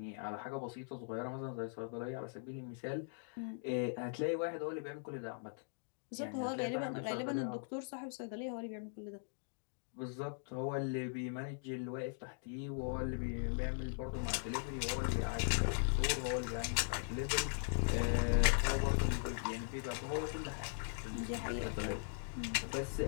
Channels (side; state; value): right; silent; digital silence